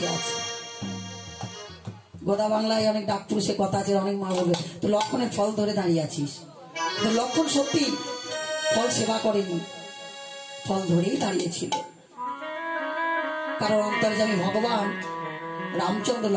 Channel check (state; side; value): identical; both; correlation 1.00